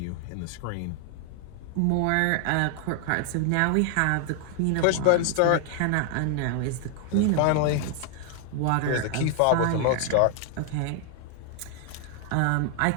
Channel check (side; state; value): both; different; correlation 0.00